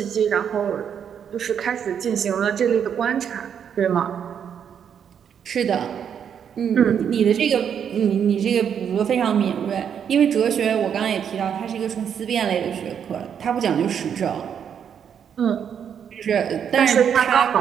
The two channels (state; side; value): quieter; left; 8.1 dB